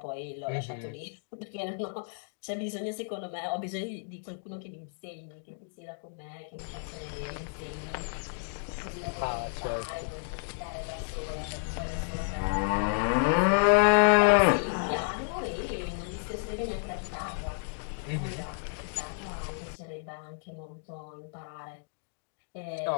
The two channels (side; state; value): right; silent; digital silence